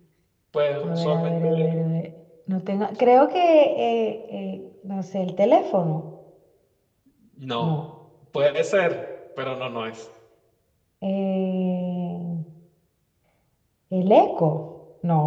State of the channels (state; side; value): identical; both; correlation 1.00